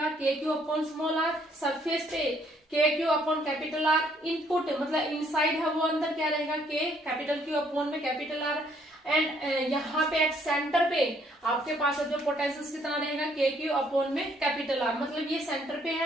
k Q upon small r. Surface पे के Q upon capital R. Input मतलब इनसाइड है वो अंदर क्या रहेगा, के कैपिटल क्यू अपॉन में कैपिटल आर। एंड यहाँ पे एट सेंटर पे आपके पास जो पोटेंशियल कितना रहेगा, के क्यू अपॉन में कैपिटल आर। मतलब ये सेंटर पे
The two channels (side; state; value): both; normal; correlation 0.67